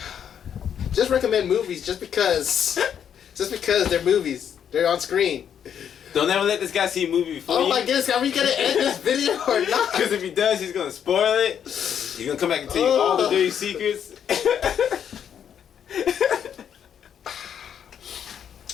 Just recommend movies just because they're movies. They're on screen. Don't ever let this guy see a movie before Oh you. my goodness, are we gonna end this video or not? Because if he does, he's gonna spoil it. He's gonna come back and tell you all the dirty secrets.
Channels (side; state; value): right; quieter; 8.6 dB